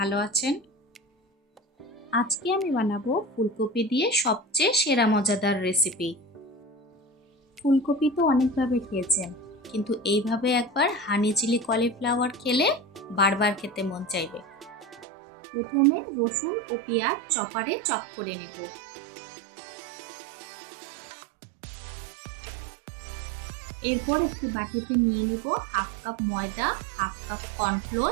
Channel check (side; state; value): left; drops out; at 15.1 s